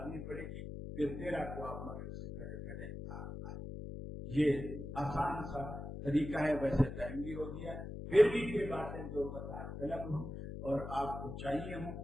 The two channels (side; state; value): left; noise; hum, 8 dB below the sound